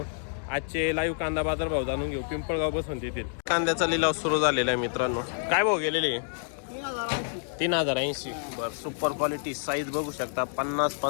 आजचे लाईव्ह कांदा बाजारभाव जाणून घेऊ पिंपळगाव बसून तेथील. कांद्याचा लिलाव सुरू झालेला आहे मित्रांनो. काय भाव गेलेले? 3080. बरं, सुपर क्वालिटी साईज बघू शकता. 50,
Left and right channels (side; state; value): right; silent; digital silence